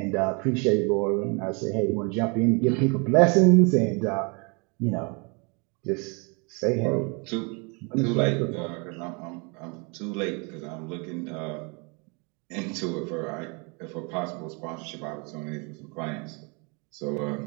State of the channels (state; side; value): quieter; left; 32.6 dB